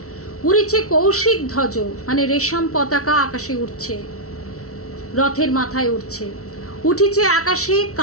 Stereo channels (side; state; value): right; late; 0.64 ms